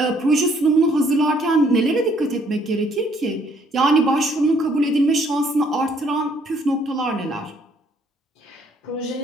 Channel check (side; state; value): both; normal; correlation 0.65